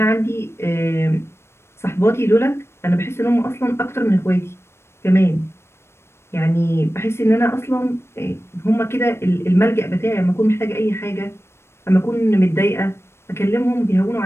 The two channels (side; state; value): right; late; 0.12 ms